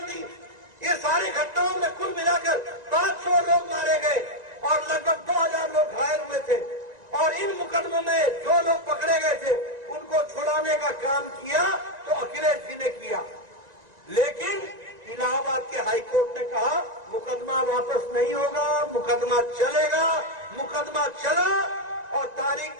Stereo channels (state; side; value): late; left; 1.9 ms